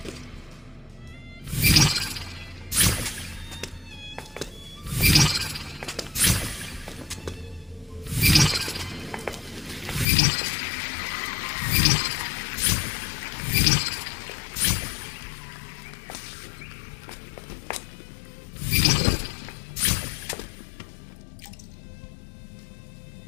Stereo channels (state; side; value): drops out; right; at 10.1 s